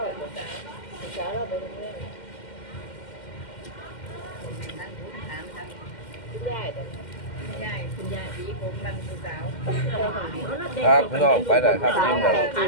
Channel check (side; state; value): right; late; 2.1 ms